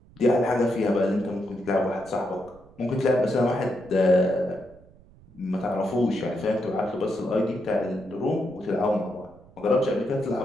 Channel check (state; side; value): noise; right; rumble, 25 dB below the sound